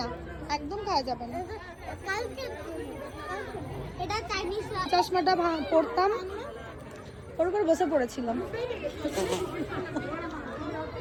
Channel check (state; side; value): identical; both; correlation 1.00